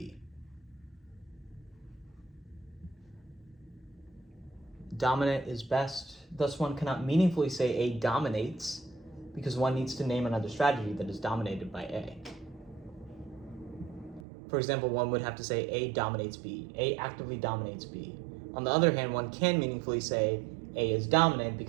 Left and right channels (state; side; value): drops out; left; at 14.2 s